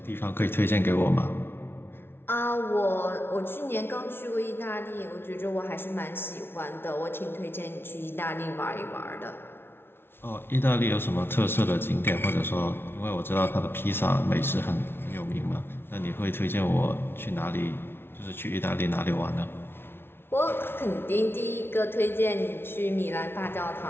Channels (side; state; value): right; late; 0.11 ms